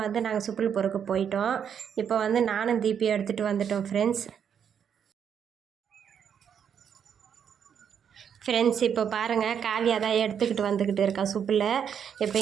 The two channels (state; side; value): quieter; left; 8.0 dB